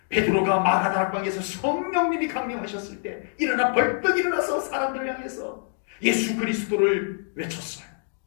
베드로가 마가다락방에서 성령님이 강림하셨을 때 일어나 벌떡 일어나서 사람들을 향해서 예수 그리스도를 외쳤어요.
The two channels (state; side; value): silent; right; 55 dB below the other